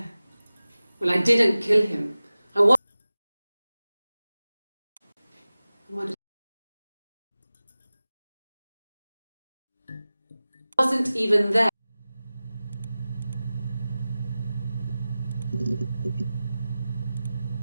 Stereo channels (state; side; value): inverted; both; correlation -0.96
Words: Well, I didn't kill him. I wasn't even there.